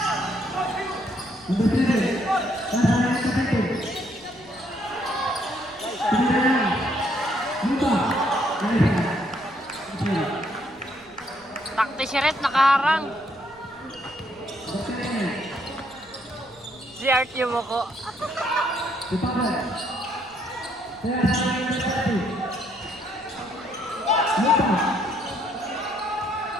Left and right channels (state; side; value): noise; left; rumble, 28 dB below the sound